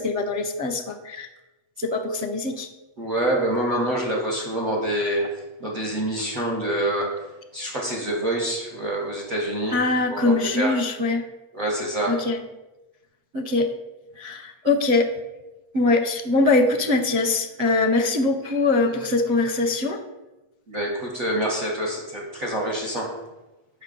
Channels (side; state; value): left; late; 8.2 ms